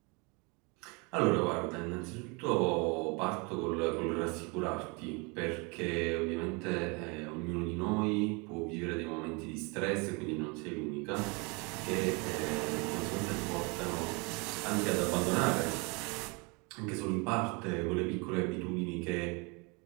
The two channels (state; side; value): quieter; left; 30.2 dB